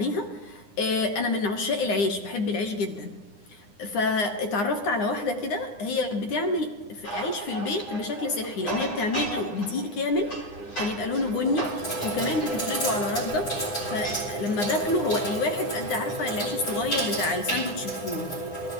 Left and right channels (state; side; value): late; right; 9.8 ms